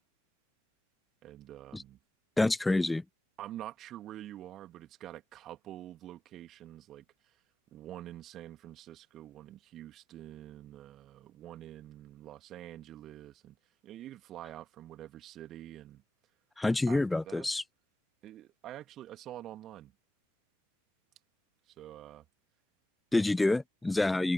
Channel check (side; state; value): both; normal; correlation 0.96